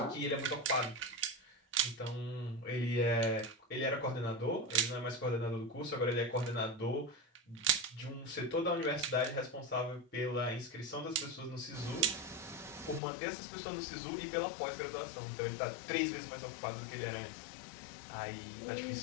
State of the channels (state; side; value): drops out; right; at 13.0 s